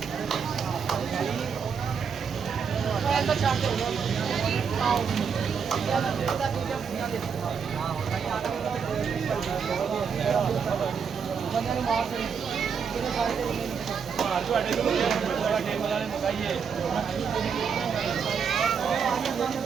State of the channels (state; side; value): quieter; left; 6.5 dB